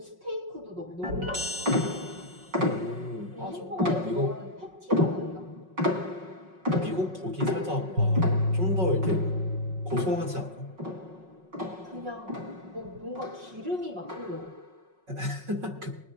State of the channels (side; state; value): left; late; 5.5 ms